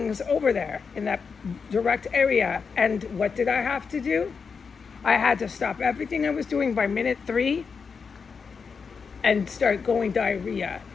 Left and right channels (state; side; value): quieter; right; 5.6 dB